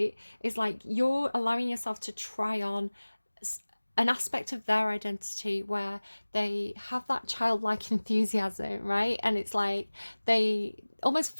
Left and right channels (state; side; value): inverted; both; correlation -1.00